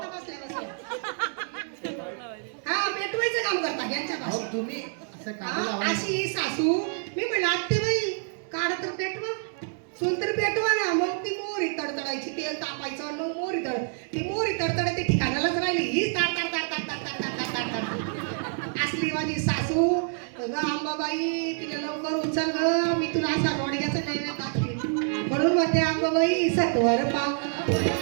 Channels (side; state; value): left; silent; 56 dB below the other